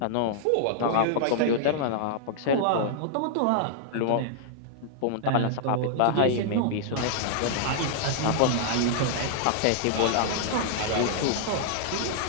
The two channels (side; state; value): both; different; correlation -0.01